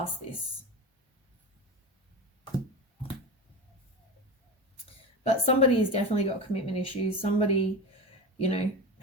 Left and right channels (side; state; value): both; normal; correlation 0.25